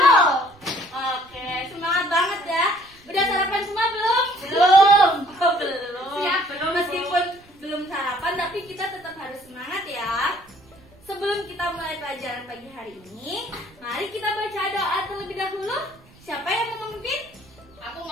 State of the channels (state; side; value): noise; right; rumble, 27 dB below the sound